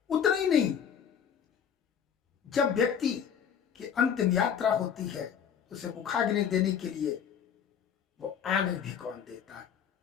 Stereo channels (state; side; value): quieter; right; 8.0 dB